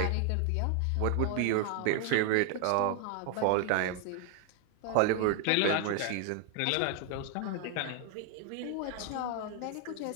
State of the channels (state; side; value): different; both; correlation 0.00